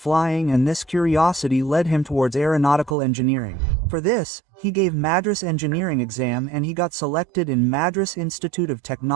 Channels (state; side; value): drops out; left; at 3.0 s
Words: and this curiosity led him towards aeronautical engineering. For this, he gave Madras engineering exam and he got selected in Madras Institute of